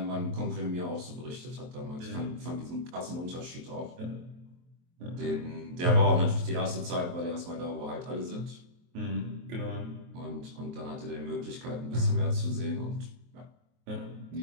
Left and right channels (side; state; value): left; late; 23 ms